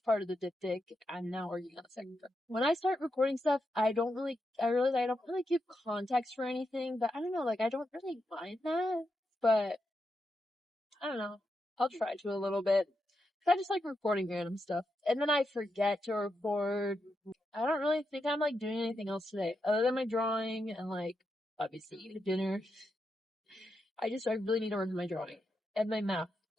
part of the diptych. I'm now working on the second part. When I start recording stuff, I realize I don't really give context for anything, but I don't know, like, I don't really mind that, but I don't know. I'll try to a little bit. I just like recording random stuff. And then I forget to record. I don't really think I'm like doing anything else today other than my drawing and like obviously eating dinner. I really need to work on my drawing and my math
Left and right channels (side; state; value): both; normal; correlation 0.85